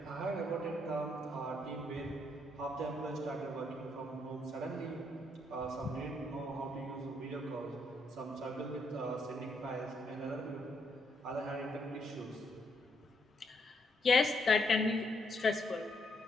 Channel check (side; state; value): both; normal; correlation 0.75